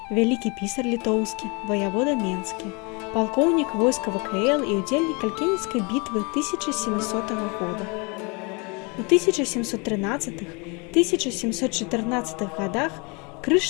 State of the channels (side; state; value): right; quieter; 30.5 dB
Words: вялікі пісар літоўскі, ваявода менскі, палкоўнік войска ВКЛ і удзельнік Калькенецкай бітвы 1700 года. У 1713-1714 годах